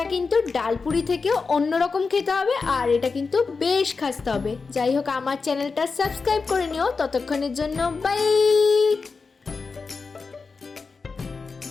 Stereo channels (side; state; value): right; quieter; 4.6 dB